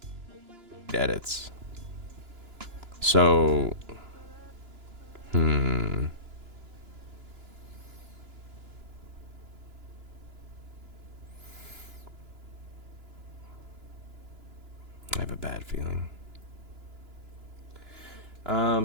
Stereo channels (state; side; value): late; left; 2.9 ms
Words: edits. So, I have a bad feeling.